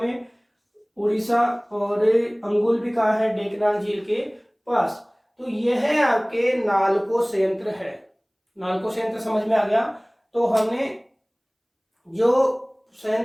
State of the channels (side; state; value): both; identical; correlation 1.00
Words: उड़ीसा। और अंगुल भी कहा है? डेकनाल झील के पास। तो यह आपके नालको संयंत्र है। नालको संयंत्र समझ में आ गया। तो हमने जो